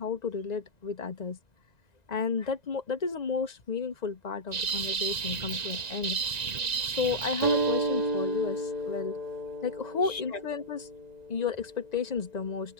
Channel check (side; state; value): right; late; 1.9 ms